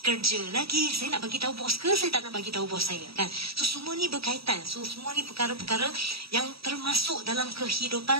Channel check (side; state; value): left; late; 0.76 ms